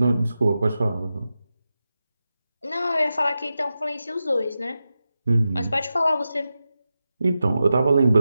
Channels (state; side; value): inverted; both; correlation -0.91